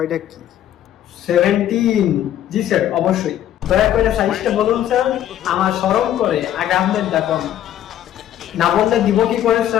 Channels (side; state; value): right; quieter; 11.5 dB